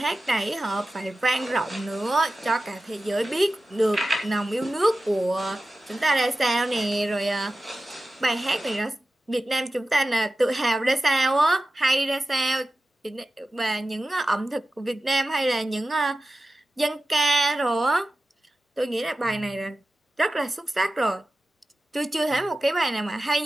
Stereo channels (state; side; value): normal; both; correlation 0.94